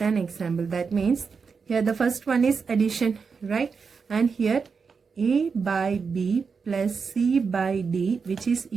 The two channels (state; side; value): quieter; left; 5.4 dB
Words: an example. That means here the first one is addition, right? And here A by B plus C by D, which is